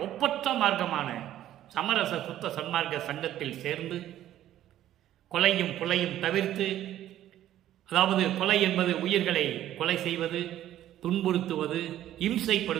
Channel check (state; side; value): quieter; left; 12.6 dB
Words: ஒப்பற்ற மார்க்கமான சமரச சுத்த சன்மார்க்க சங்கத்தில் சேர்ந்து கொலையும் புலையும் தவிர்த்து, அதாவது கொலை என்பது உயிர்களை கொலை செய்வது, துன்புறுத்துவது,